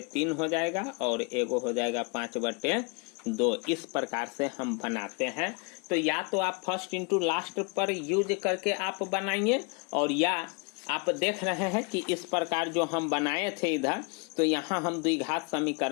हो जाएगा और एगो हो जाएगा 5/2। इस प्रकार से हम बनाते हैं। तो या तो आप फर्स्ट इंटू लास्ट पर यूज करके आप बनाइए, और या आप देख रहे हैं कि इस प्रकार जो हम बनाए थे इधर, तो यहाँ हम द्विघात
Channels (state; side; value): quieter; right; 32.6 dB